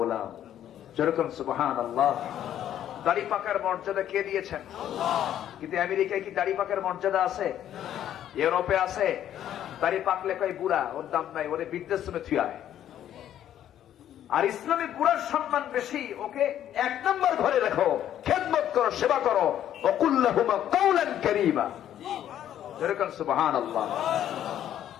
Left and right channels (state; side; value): quieter; right; 11.0 dB